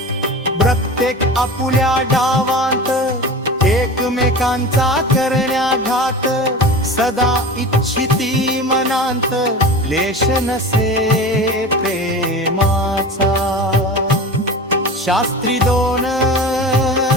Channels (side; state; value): both; normal; correlation 0.32